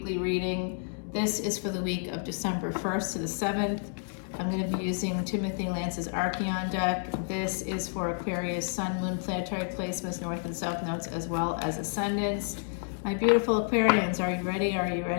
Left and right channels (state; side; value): silent; right; 58 dB below the other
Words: reading. This is for the week of December 1st to the 7th. I'm going to be using Timothy Lance's Archeon deck. This is for Aquarius, Sun, Moon, planetary placements, North and South nodes, as well as Ascendants. My beautiful Aquarians, are you ready? Are you